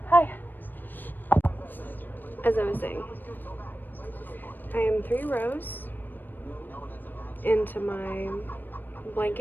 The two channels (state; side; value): late; right; 0.091 ms